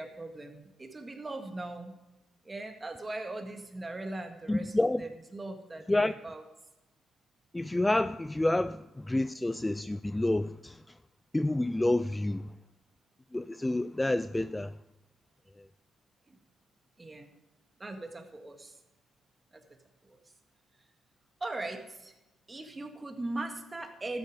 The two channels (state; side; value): normal; both; correlation 0.98